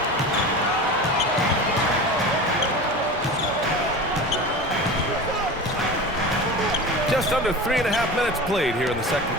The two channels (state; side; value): normal; both; correlation 0.31